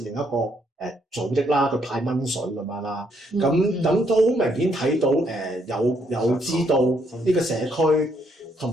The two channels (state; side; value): normal; both; correlation 0.72